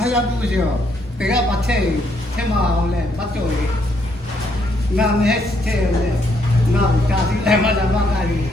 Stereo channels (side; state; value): both; normal; correlation 0.72